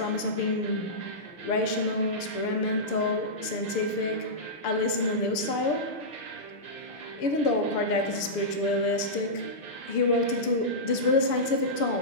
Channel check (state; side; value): late; right; 6.8 ms